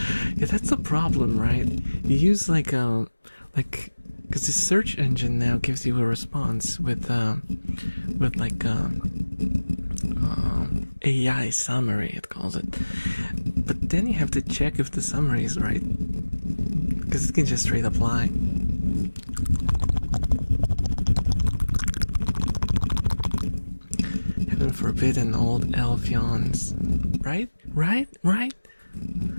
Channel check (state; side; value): inverted; both; correlation -1.00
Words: Yeah, that's the problem, right? You use like because the search engine now gives you a response with AI summary, it calls it. But then you have to check if the summary is right, because it can just straight up lie. Heaven forbid an old elf yawns. Right? I